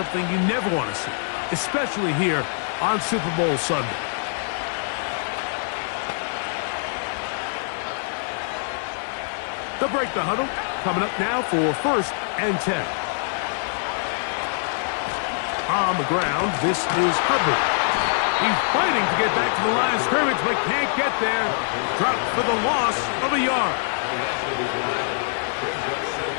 you never want to see, especially here on Super Bowl Sunday. They'll break the huddle. Coming up now for 1st and 10. On the ground, this is Hubbard. He's fighting to get back to the line of scrimmage, but can't get there. Dropped for the loss of a yard.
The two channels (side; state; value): right; silent; 63 dB below the other